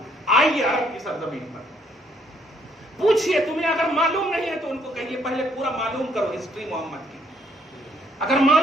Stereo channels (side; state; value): both; normal; correlation 0.68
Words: آئیے عرب کی سرزمین پر، پوچھئے، تمہیں اگر معلوم نہیں ہے تو ان کو کہیے پہلے پورا معلوم کرو ہسٹری محمد کی، اگر